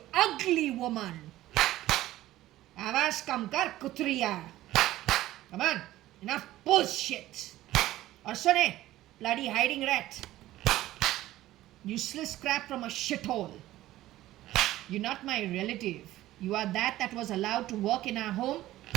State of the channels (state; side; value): quieter; left; 15.3 dB